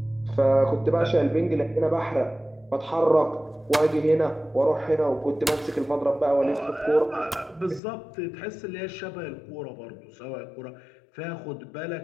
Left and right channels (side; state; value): right; drops out; at 7.8 s